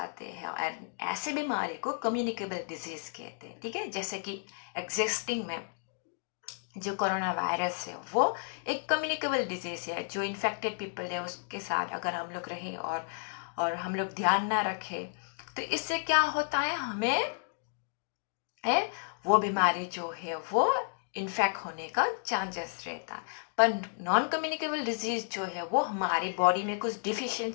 हैं, और ऐसे बीमारी को कम्युनिकेबल डिजीज कहते हैं, ठीक है। जैसे कि एग्जिस्टिंग में जो कोरोना वायरस है वो एक कम्युनिकेबल डिजीज है, जो इन्फेक्टेड पीपल है उसके साथ अगर हम लोग रहें और हम लोग ध्यान ना रखें तो इससे क्या होता है, हमें वो बीमारी जो है वो इन्फेक्ट होने का चांसेस रहता है। पर नॉन कम्युनिकेबल डिजीज जो है वो हमारी बॉडी में कुछ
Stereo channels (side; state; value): right; silent; digital silence